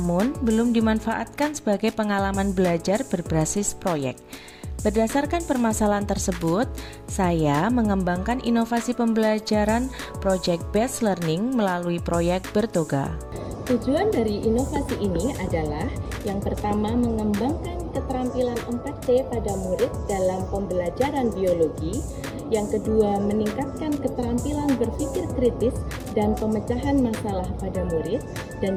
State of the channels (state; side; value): identical; both; correlation 1.00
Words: belum dimanfaatkan sebagai pengalaman belajar berbasis proyek. Berdasarkan permasalahan tersebut, saya mengembangkan inovasi pembelajaran Project Based Learning melalui proyek Bertoga. Tujuan dari inovasi ini adalah yang pertama mengembangkan keterampilan 4C pada murid dalam pembelajaran biologi, yang kedua meningkatkan keterampilan berpikir kritis dan pemecahan masalah pada murid, dan